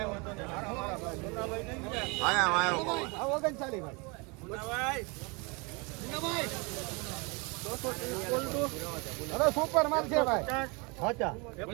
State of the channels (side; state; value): left; quieter; 29.6 dB